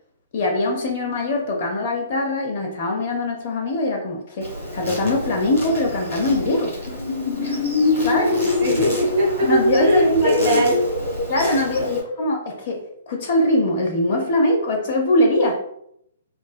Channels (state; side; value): inverted; both; correlation -0.54